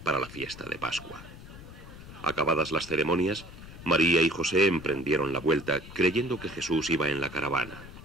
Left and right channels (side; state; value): left; noise; rumble, 16 dB below the sound